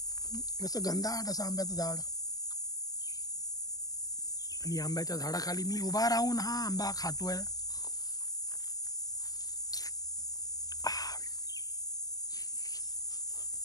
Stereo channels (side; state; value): right; late; 0.18 ms